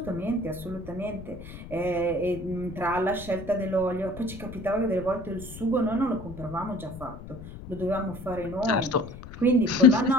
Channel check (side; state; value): left; noise; rumble, 13 dB below the sound